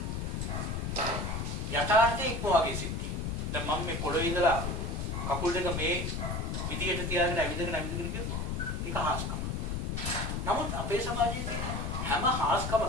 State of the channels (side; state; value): left; noise; rumble, 2 dB below the sound